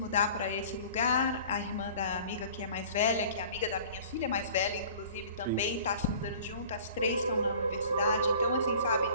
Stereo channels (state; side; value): inverted; both; correlation -0.46